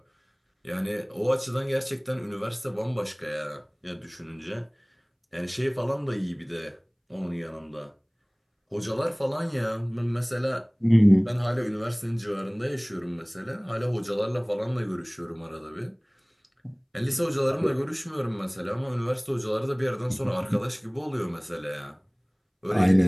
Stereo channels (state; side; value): identical; both; correlation 1.00